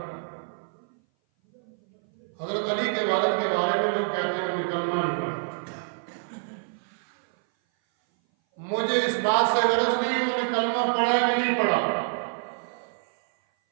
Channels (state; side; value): silent; left; 57 dB below the other